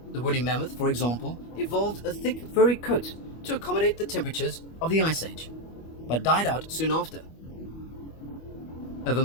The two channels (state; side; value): late; right; 25 ms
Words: The woolly mammoth, for example, evolved a thick furry coat to accommodate the temperatures of the Ice Age, but died out soon after. Over